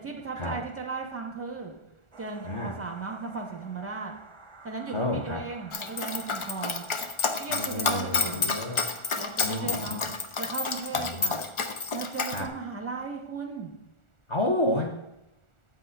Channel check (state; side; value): late; right; 1.4 ms